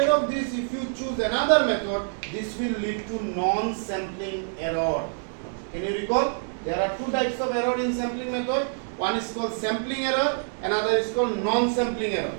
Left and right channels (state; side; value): silent; left; digital silence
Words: of this if you choose another method this will lead to non sampling error can you recall there are two types of error in sampling method one is called sampling error another is called non sampling error